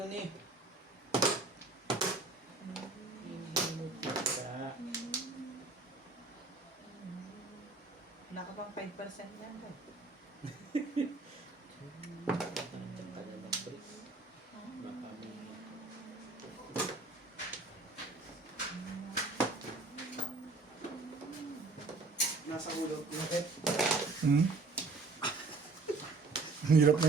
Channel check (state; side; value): quieter; left; 3.7 dB